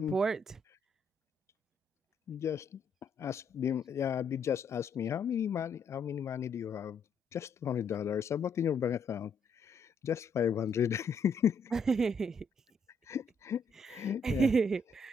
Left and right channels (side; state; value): right; quieter; 3.0 dB